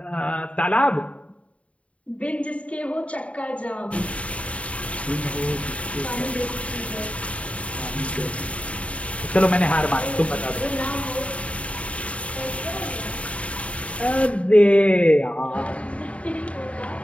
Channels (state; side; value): late; right; 0.064 ms